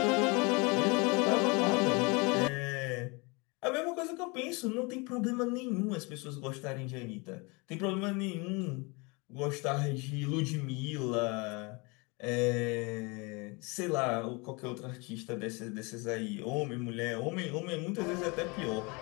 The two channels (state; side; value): quieter; right; 28.4 dB